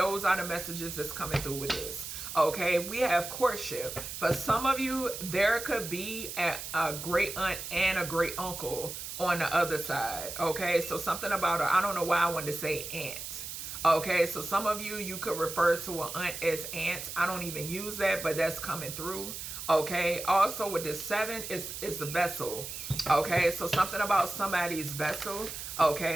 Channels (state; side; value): noise; right; hiss, 8 dB below the sound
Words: are the messages that's coming through with this. Okay, we have courtship. For some of you, there could be a great aunt and a great uncle on the other side. Okay, so something about her, I don't know why I wanted to say aunt. Okay, so some of you could refer to an aunt as aunt. I don't even use that, but that's coming through. Okay, also with this 7 is the vessel. Okay, so something about somebody's vessel.